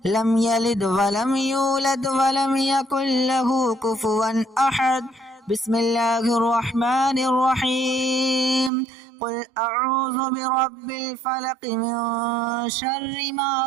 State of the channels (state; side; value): drops out; left; at 8.7 s